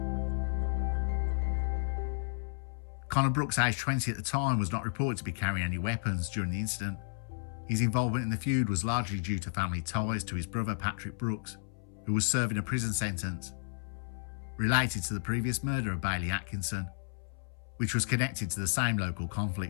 Connor Brookes, aged 20 at the time, was not reported to be carrying any weapons during the incident. His involvement in the feud was largely due to family ties to his brother Patrick Brookes, who was serving a prison sentence related to the previous murder of Bailey Atkinson, which was connected to the same local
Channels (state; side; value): silent; right; 56 dB below the other